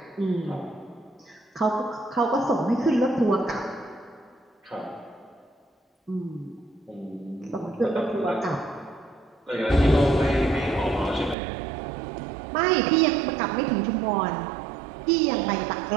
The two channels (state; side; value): drops out; left; at 11.4 s